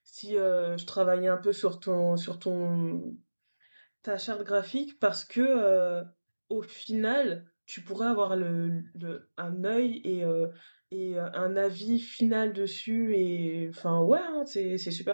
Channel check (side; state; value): both; inverted; correlation -1.00